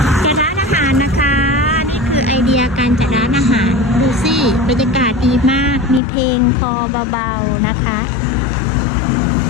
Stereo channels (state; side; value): drops out; right; at 6.0 s